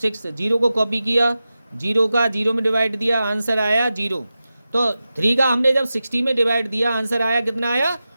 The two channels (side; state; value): both; inverted; correlation -0.93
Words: 0 को कॉपी किया, 0 का 0 में डिवाइड दिया, आंसर आया 0। तो 3 का हमने जब 60 में डिवाइड दिया, आंसर आया कितना आया